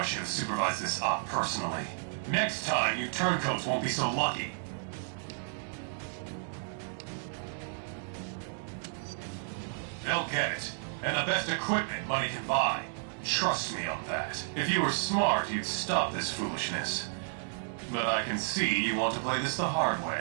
should have supervised this op personally. Next time, you turncoats won't be so lucky. They'll get it. And the best equipment money can buy. Trust me on that. If you were smart, you'd stop this foolishness. But I can see you want to play this the hard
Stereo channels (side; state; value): left; silent; digital silence